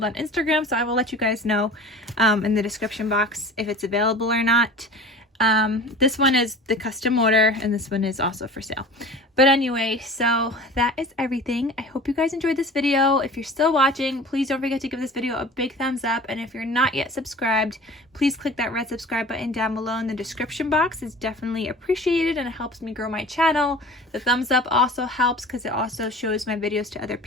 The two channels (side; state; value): both; normal; correlation 0.40